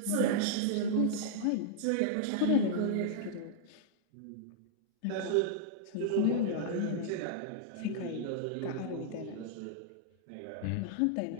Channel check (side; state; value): both; different; correlation -0.01